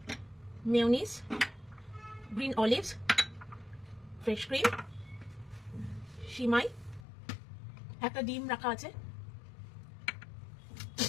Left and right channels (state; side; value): drops out; right; at 7.1 s